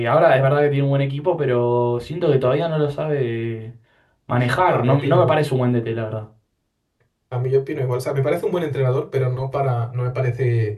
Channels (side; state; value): both; identical; correlation 1.00